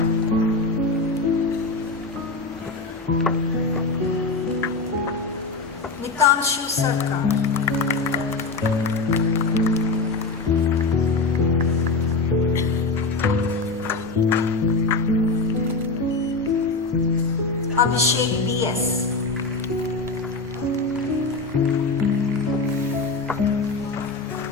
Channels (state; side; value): quieter; right; 3.8 dB